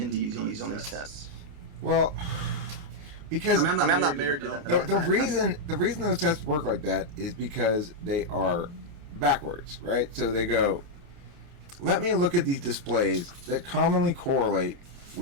on these tests? Well, because I'm not married to that. The reason those tests work like that is because they are backwards, right? So they go, let me look at these displays that commonly correlate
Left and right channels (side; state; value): left; late; 29 ms